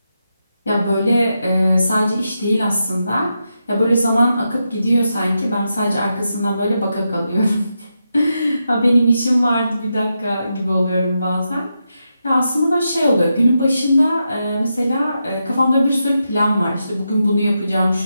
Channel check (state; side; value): inverted; both; correlation -0.86